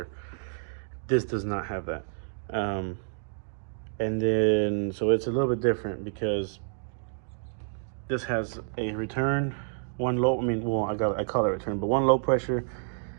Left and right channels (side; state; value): left; silent; digital silence